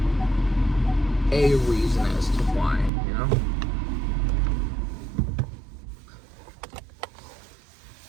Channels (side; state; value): left; drops out; at 2.9 s